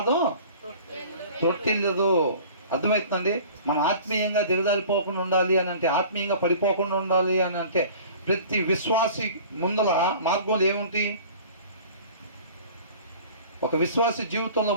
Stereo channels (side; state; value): both; inverted; correlation -0.45